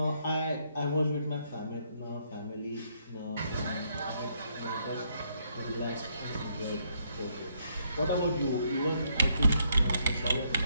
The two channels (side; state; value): both; inverted; correlation -0.73